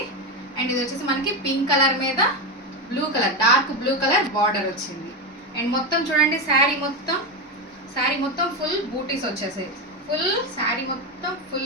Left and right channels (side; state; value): both; normal; correlation 0.13